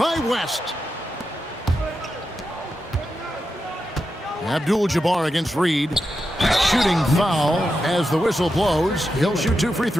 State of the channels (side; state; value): both; normal; correlation 0.88